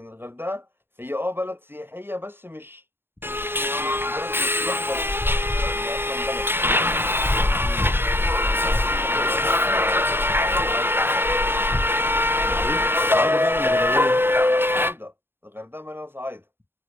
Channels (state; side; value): late; left; 0.11 ms